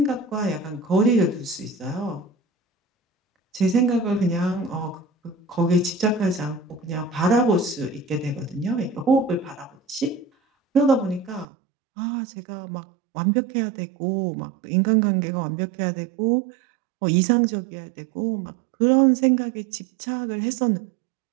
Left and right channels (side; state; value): left; drops out; at 11.5 s